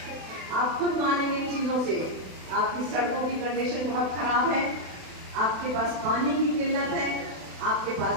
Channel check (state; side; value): late; left; 32 ms